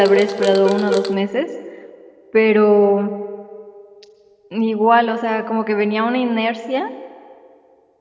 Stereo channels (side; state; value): both; identical; correlation 1.00